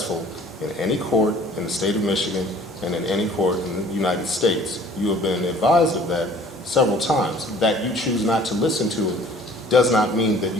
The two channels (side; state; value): both; normal; correlation 0.52